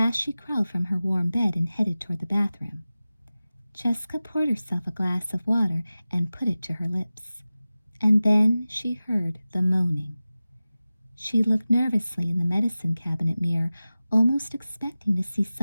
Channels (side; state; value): both; inverted; correlation -0.96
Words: she crawled from her warm bed and headed toward the bathroom. Jessica poured herself a glass of water and put it to her lips. And then she heard the moaning. She looked nervously in the medicine cabinet mirror, almost expecting to see